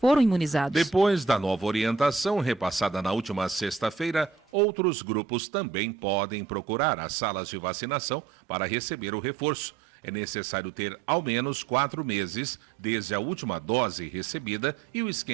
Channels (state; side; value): drops out; left; at 4.4 s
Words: imunizados. Depois da nova orientação, repassada na última sexta-feira, outros grupos também podem procurar as salas de vacinação para receber o reforço. É necessário ter ao menos 4 meses desde a última dose recebida e o